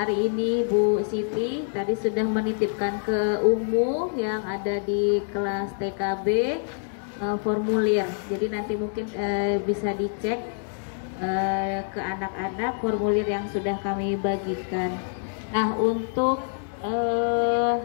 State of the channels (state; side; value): silent; right; digital silence